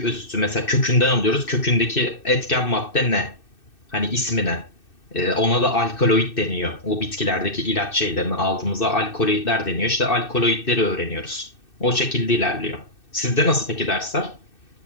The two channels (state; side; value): late; right; 2.6 ms